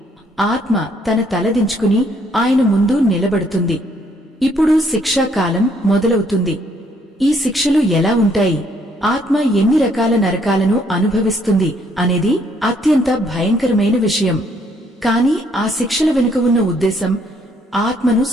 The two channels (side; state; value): both; normal; correlation 0.68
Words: ఆత్మ తన తలదించుకుని ఆయన ముందు నిలబడుతుంది. ఇప్పుడు శిక్షాకాలం మొదలవుతుంది. ఈ శిక్షలు ఎలా ఉంటాయి, ఆత్మ ఎన్ని రకాల నరకాలను అనుభవిస్తుంది అనేది అత్యంత భయంకరమైన విషయం. కాని ఆ శిక్షల వెనుక ఉన్న ఉద్దేశం ఆత్మను